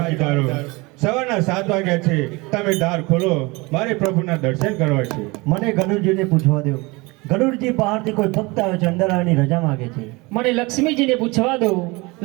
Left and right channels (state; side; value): quieter; left; 24.7 dB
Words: સવારના 7 વાગ્યા છે, તમે દ્વાર ખોલો, મારે પ્રભુના દર્શન કરવા છે. મને ગણુરજીને પૂછવા દો. ગણુરજી બહારથી કોઈ ભક્ત આવે છે, અંદર આવવાની રજા માંગે છે. મને લક્ષ્મીજીને પૂછવા દો.